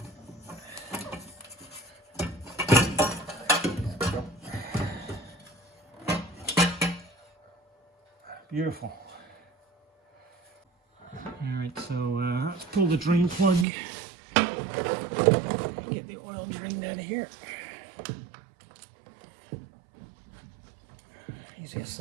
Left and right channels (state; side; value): drops out; left; at 13.7 s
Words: Beautiful. Alright, so let's pull the drain plug. Get the oil drained out of here. Easiest